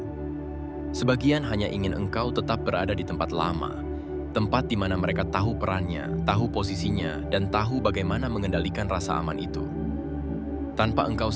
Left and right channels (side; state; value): both; identical; correlation 1.00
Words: Sebagian hanya ingin engkau tetap berada di tempat lama, tempat di mana mereka tahu perannya, tahu posisinya, dan tahu bagaimana mengendalikan rasa aman itu. Tanpa engkau